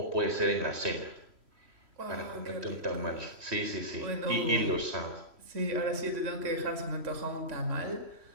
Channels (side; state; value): left; late; 3.1 ms